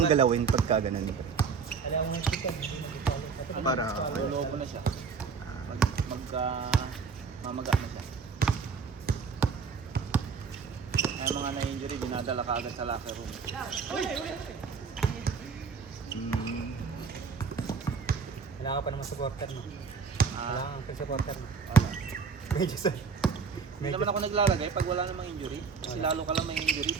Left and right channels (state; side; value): quieter; left; 5.5 dB